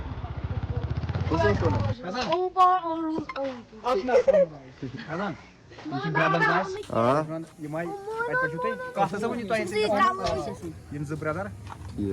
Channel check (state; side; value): identical; both; correlation 1.00